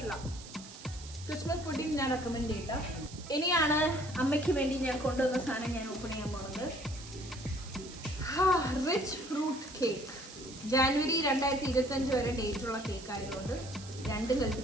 ക്രിസ്മസ് പുഡിംഗ് ഞാൻ റെക്കമെൻഡ് ചെയ്യില്ല. ഇനിയാണ് അമ്മയ്ക്ക് വേണ്ടി ഞാൻ കൊണ്ടുവന്ന സാധനം ഞാൻ ഓപ്പൺ ചെയ്യാൻ പോകുന്നത്. Rich fruit cake. ജാനുവരി 2025 വരെ ഡേറ്റുള്ള കേക്ക് ആയതുകൊണ്ട് രണ്ടും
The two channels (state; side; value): noise; right; hiss, 15 dB below the sound